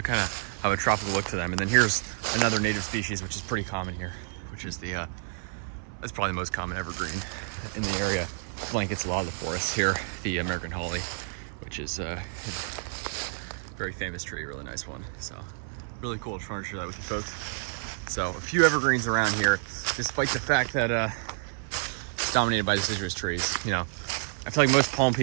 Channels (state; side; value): silent; left; 57 dB below the other